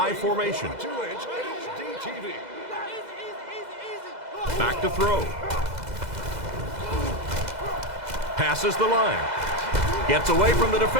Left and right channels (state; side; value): late; left; 2.0 ms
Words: formation. Back to throw. Passes the line. Gets away from the